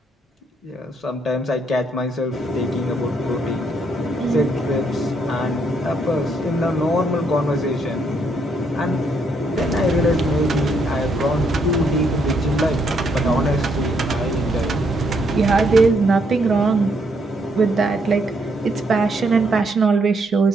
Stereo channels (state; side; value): normal; both; correlation 0.73